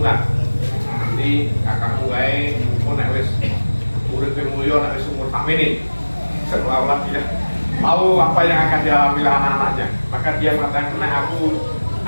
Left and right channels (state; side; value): inverted; both; correlation -1.00